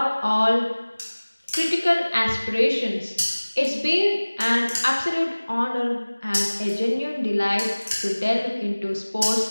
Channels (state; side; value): inverted; both; correlation -1.00